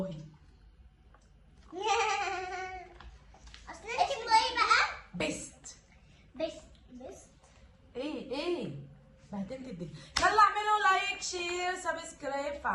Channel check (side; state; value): both; identical; correlation 1.00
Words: اصل انت ايه بقى؟ بيست. ايه بهدلت الدنيا. يلا اعملوا لايك شير سبسكرايب